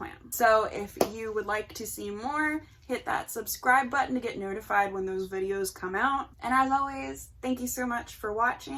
So if you would like to see more, hit that subscribe button to get notified when those videos come out. And as always, thank you so much for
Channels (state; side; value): identical; both; correlation 1.00